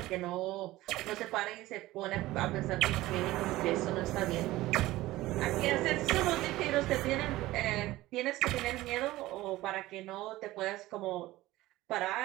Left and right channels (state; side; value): quieter; left; 17.4 dB